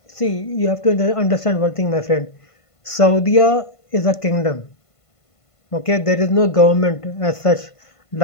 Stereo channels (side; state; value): right; late; 1.5 ms